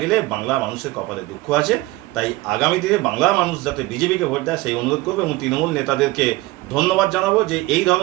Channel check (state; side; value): quieter; left; 20.1 dB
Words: বাংলা মানুষের কপালে দুঃখ আছে। তাই আগামী দিনে বাংলা মানুষ যাতে বিজেপিকে ভোট দেয় সেই অনুরোধ করবে এবং তৃণমূল নেতাদেরকে ধন্যবাদ জানাবো যে এই